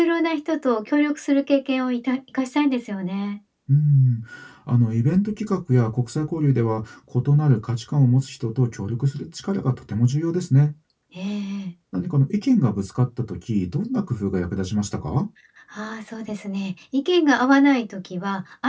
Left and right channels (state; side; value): identical; both; correlation 1.00